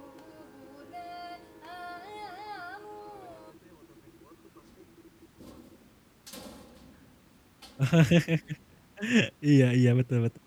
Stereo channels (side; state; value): both; identical; correlation 1.00